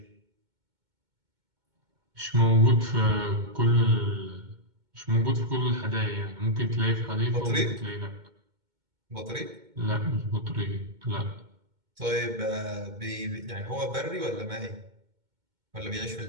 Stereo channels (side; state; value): left; late; 2.2 ms